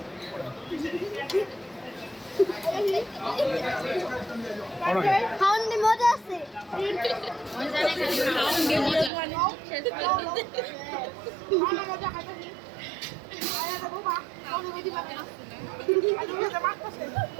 খাওয়ান দিয়ে মজা আছে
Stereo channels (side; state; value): left; drops out; at 9.1 s